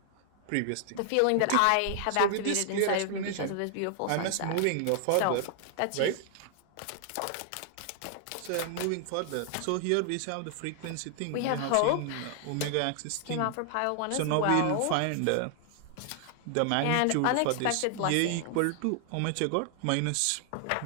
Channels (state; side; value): different; both; correlation 0.00